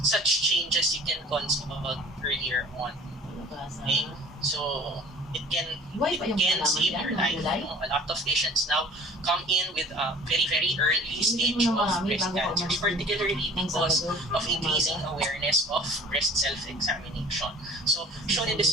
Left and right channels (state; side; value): normal; both; correlation 0.46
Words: such changes you can consult earlier on. Okay? So it can save your life. A lot of patients now come in with a very, very early stage of breast cancer, particularly because of increasing awareness of breast self-examination. So shown in this